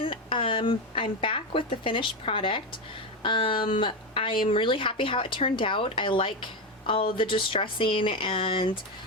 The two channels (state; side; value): normal; both; correlation 0.13